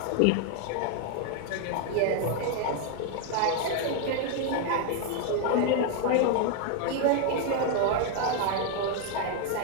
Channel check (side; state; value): both; different; correlation 0.00